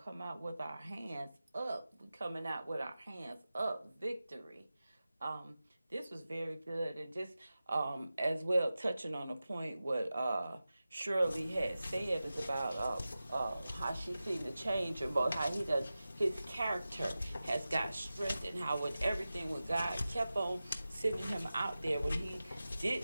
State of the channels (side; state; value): both; inverted; correlation -0.95